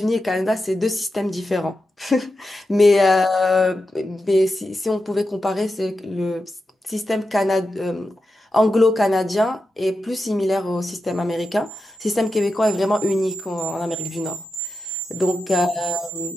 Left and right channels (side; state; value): both; normal; correlation 0.90